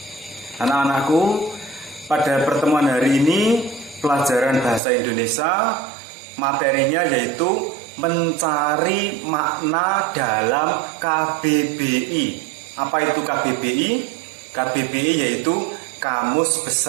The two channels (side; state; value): left; drops out; at 4.8 s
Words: Anak-anakku, pada pertemuan hari ini, pelajaran bahasa Indonesia, materinya yaitu mencari makna dalam KBBI. Apa itu KBBI? KBBI yaitu Kamus